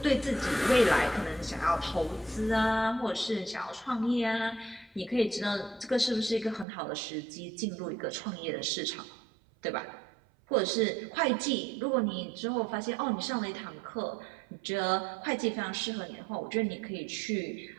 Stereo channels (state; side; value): drops out; left; at 6.7 s